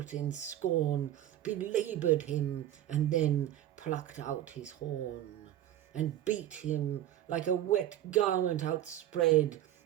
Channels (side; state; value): left; quieter; 12.5 dB